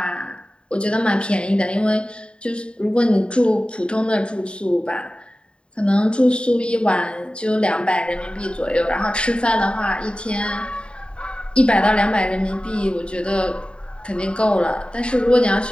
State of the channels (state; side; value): late; right; 0.053 ms